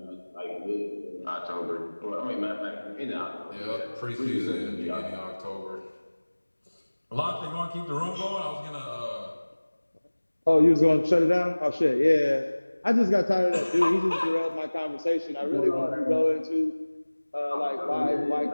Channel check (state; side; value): inverted; both; correlation -1.00